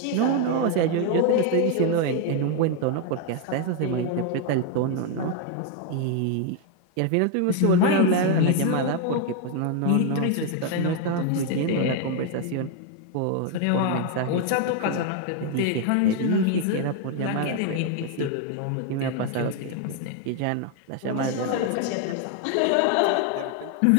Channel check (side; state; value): both; different; correlation 0.01